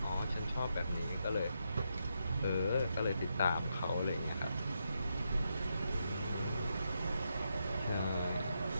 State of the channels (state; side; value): inverted; both; correlation -0.82